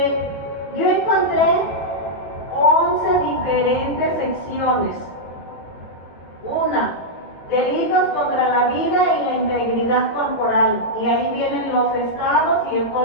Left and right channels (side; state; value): right; late; 18 ms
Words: Yo encontré 11 diferentes secciones. Una, delitos contra la vida y la integridad corporal. Y ahí vienen los estados y el